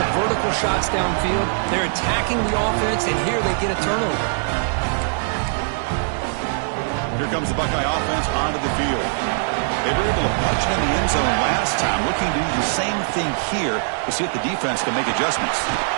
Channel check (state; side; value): silent; left; digital silence